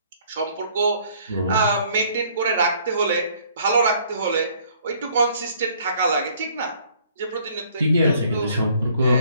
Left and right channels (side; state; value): both; inverted; correlation -0.61